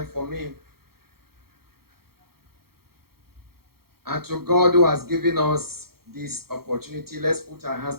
for me. And to God who has given us this opportunity, let's put our hands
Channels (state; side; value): late; left; 0.94 ms